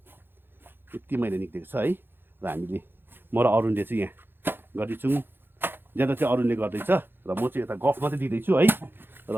यति मैला निक्लेको छ है। र हामीले म र अरुणले चाहिँ यहाँ गर्दैछौँ, ज्यादा चाहिँ अरुणले गर्दैछ र म चाहिँ यता गफ मात्रै दिँदैछु है। र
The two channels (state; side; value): late; left; 0.10 ms